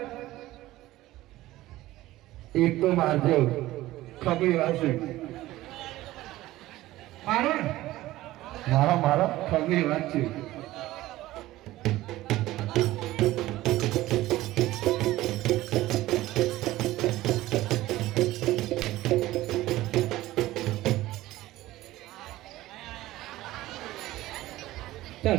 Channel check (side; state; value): left; quieter; 16.5 dB